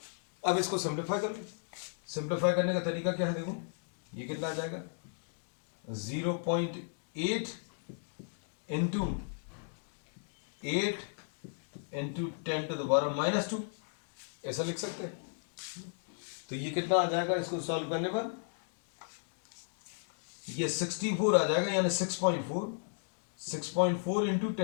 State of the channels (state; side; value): silent; right; digital silence